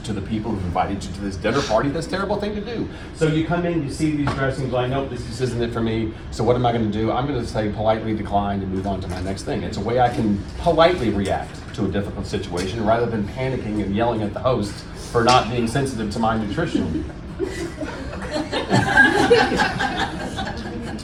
to the people who invited you to this dinner party. That's a terrible thing to do. So you come in, you see these dressings, like, nope, this isn't it for me. So what am I going to do? I'm going to say politely decline and move on to my next thing. It's a way I can politely react to a difficult situation rather than panicking and yelling at the host for not being sensitive to my nutrition.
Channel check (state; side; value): identical; both; correlation 1.00